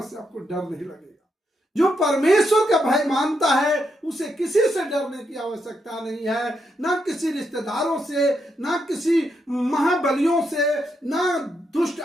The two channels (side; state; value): both; normal; correlation 0.81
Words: से आपको डर नहीं लगेगा। जो परमेश्वर का भय मानता है उसे किसी से डरने की आवश्यकता नहीं है, ना किसी रिश्तेदारों से, ना किसी महाबलियों से, ना दुष्ट